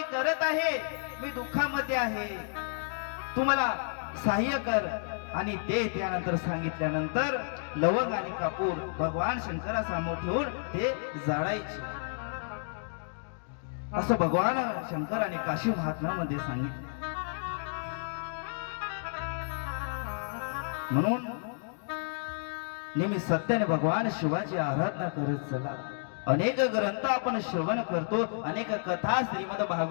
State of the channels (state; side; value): silent; right; digital silence